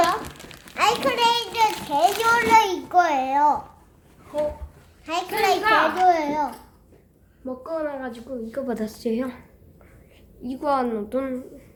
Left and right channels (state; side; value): identical; both; correlation 1.00